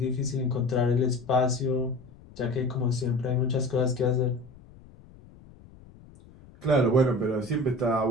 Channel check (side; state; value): left; noise; rumble, 23 dB below the sound